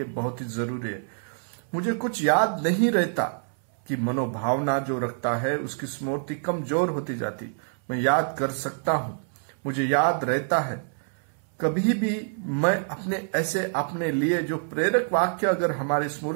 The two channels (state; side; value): silent; left; 61 dB below the other